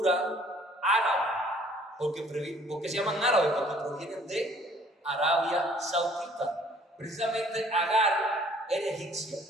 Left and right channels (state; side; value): normal; both; correlation 0.57